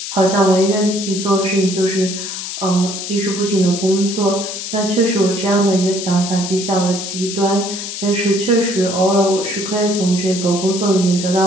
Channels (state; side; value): noise; left; hiss, 6 dB below the sound